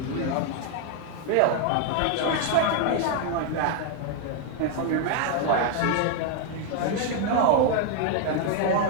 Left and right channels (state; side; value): different; both; correlation 0.00